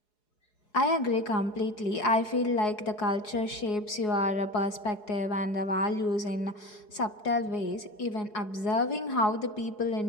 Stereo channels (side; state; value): right; late; 4.8 ms